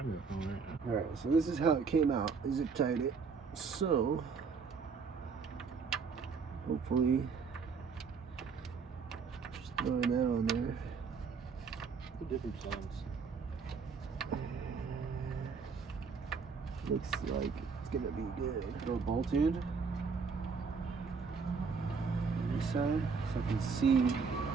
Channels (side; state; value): left; quieter; 5.3 dB